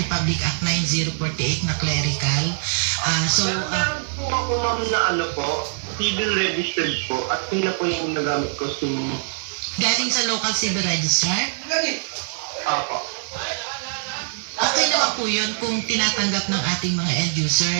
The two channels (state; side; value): silent; left; digital silence